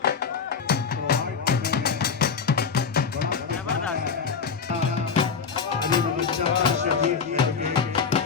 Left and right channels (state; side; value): quieter; right; 5.9 dB